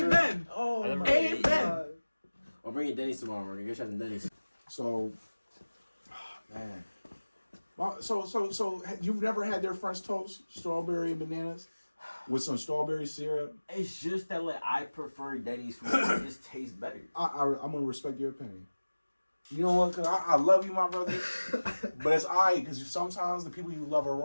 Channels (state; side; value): inverted; both; correlation -1.00